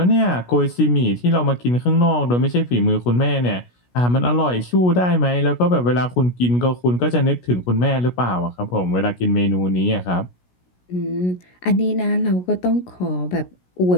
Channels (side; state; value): right; late; 16 ms